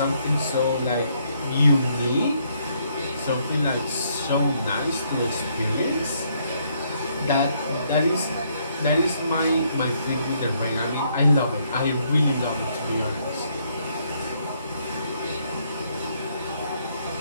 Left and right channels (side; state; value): both; inverted; correlation -0.71